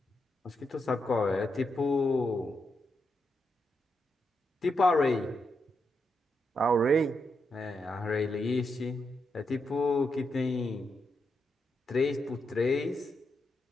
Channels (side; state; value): both; normal; correlation 0.83